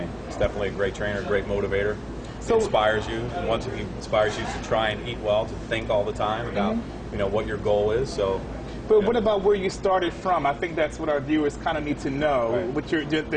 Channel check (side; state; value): both; identical; correlation 1.00